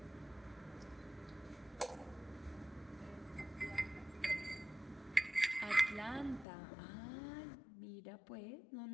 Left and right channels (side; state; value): right; drops out; at 6.5 s